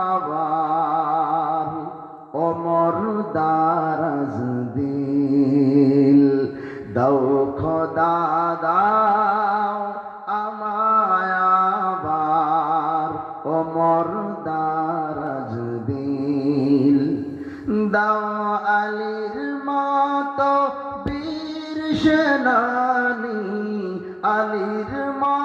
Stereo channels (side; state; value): both; identical; correlation 1.00